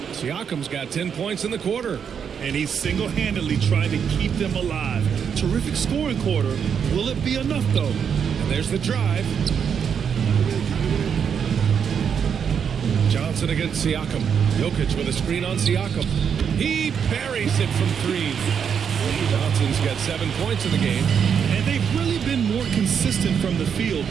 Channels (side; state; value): left; quieter; 7.3 dB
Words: Siakam's got 10 points in the quarter. And he's single-handedly trying to keep them alive. Terrific scoring quarter. Will it be enough, though? And there's the drive. Johnson Johnson against Siakam. Jokic with a screen on Siakam. He buries it from three. Johnson's got 7 points in the game. And they've really been more consistent from the field